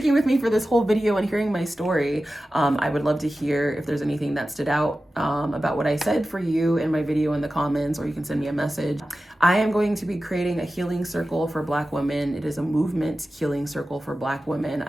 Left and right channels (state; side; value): normal; both; correlation 0.94